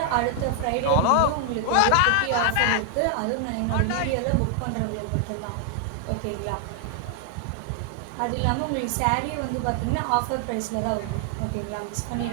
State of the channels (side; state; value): both; different; correlation 0.00